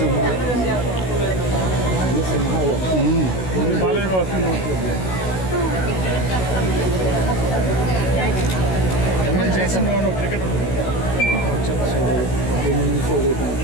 అన్ని సింహాలు. క్రికెట్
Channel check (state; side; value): late; right; 16 ms